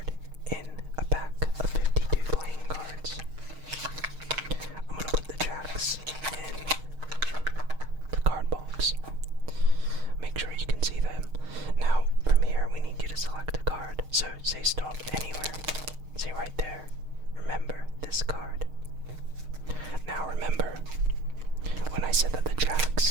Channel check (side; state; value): left; late; 6.5 ms